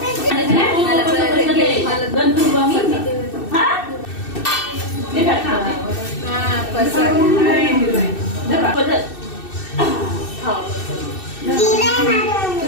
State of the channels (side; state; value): right; late; 2.6 ms